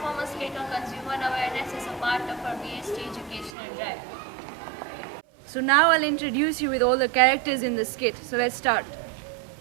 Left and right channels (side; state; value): left; drops out; at 3.5 s